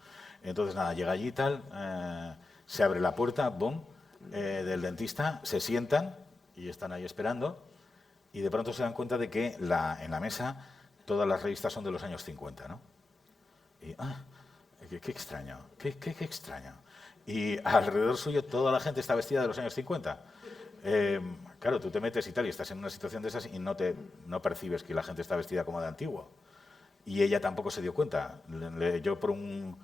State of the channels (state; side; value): quieter; right; 3.2 dB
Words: Entonces, nada, llega allí y tal, se abre la puerta, boom, del dentista, se sientan y están ahí esperando y de pronto se dan cuenta de que en la mesa todas las revistas son de los años 50, ¿no? Y, qué extraño, qué extraño. Y alrededor suyo toda la gente está vestida de los años 50. Claro, tú te metes y tal y estás en una situación de esas y no percibes que la gente está vestida como de antiguo. Y ella tampoco se dio cuenta. Yo por